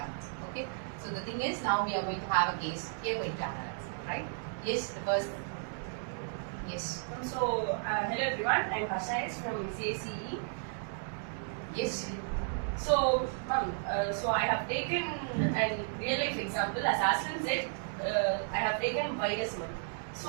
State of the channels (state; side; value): silent; left; 55 dB below the other